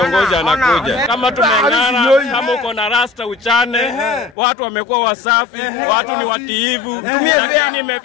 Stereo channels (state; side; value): drops out; right; at 4.4 s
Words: anakuja. Kama tumeng'ara, kama uko na rasta uchane, watu wamekuwa wasafi, watu ni watiivu. Lakini